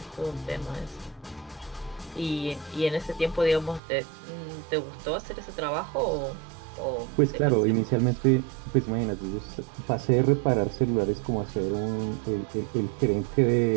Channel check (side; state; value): left; drops out; at 3.8 s